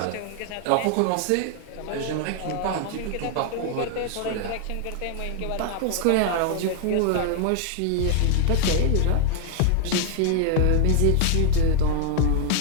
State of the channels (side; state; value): both; different; correlation 0.00